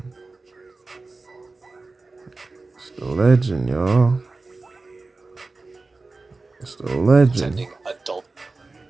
It's the legend, y'all. It's the legend. Sending adult.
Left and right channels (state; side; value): quieter; left; 3.6 dB